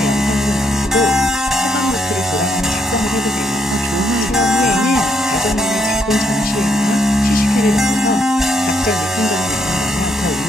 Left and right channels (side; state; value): both; normal; correlation 0.75